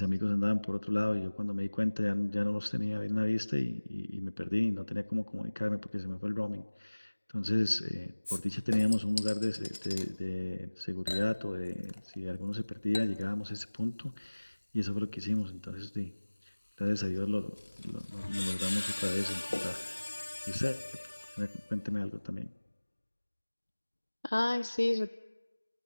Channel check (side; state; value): both; inverted; correlation -1.00